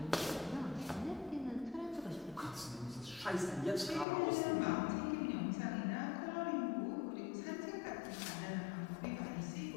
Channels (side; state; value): right; drops out; at 4.0 s